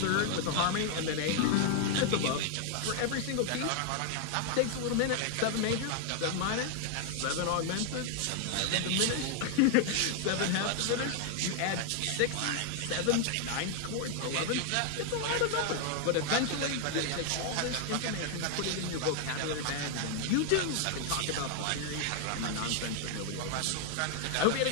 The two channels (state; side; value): different; both; correlation 0.00